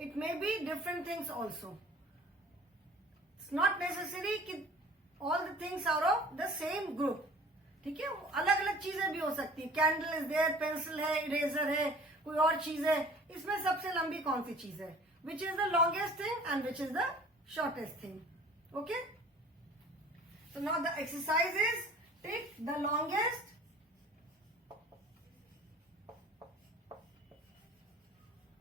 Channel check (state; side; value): normal; both; correlation 0.48